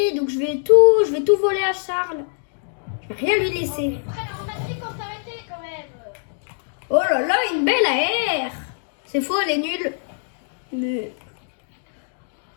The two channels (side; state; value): right; silent; digital silence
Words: Donc je vais tout voler à Charles. Je vais rien lui laisser. On a dit qu'on s'arrêtait quand même. Oh là là, une belle AR. C'est faux, elle est nulle. Mais...